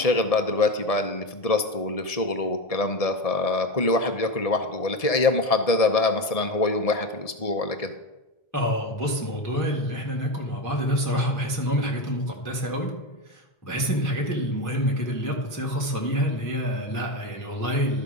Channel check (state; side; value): late; right; 1.7 ms